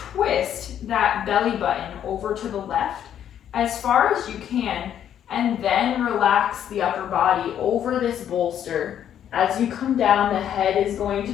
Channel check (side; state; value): right; quieter; 9.9 dB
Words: that belly button over to the left as far as you can, and then relax the upper body over this bolster. As you come down, the head is going